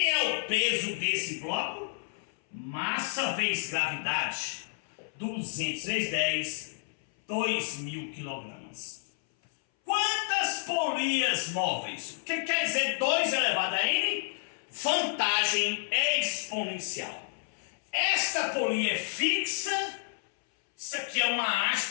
é o peso desse bloco? Massa vezes gravidade. 200 vezes 10, 2.000 kg. Quantas polias móveis? O que quer dizer 2 elevado a n? Vantagem exponencial. Esta polia é fixa. Isso aqui é uma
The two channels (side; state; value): right; silent; 58 dB below the other